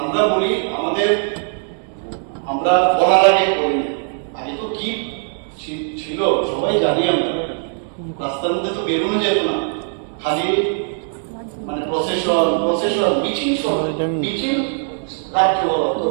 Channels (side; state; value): left; silent; 61 dB below the other